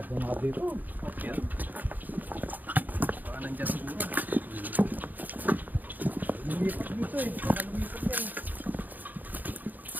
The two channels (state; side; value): late; left; 0.084 ms